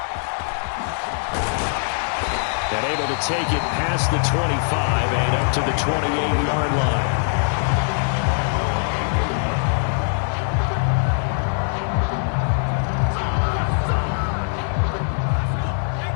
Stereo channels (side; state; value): right; silent; digital silence